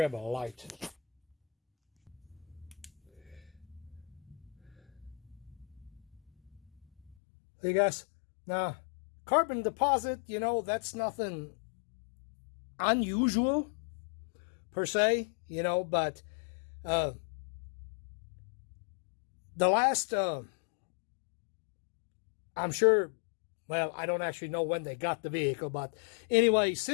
a light. See guys, now carbon deposit, you know, that's nothing unusual per se, you know, but the last I'm sure, well, I don't actually know when they got the vehicle, but anyway,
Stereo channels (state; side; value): drops out; right; at 7.2 s